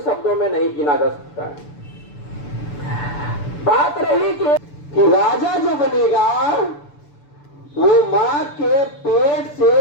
में नहीं गिना जा सकता है। बात रही कि राजा जो बनेगा वो मां के पेट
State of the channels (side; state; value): right; late; 6.9 ms